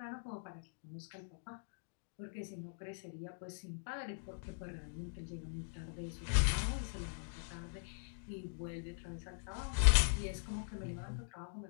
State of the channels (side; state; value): right; silent; digital silence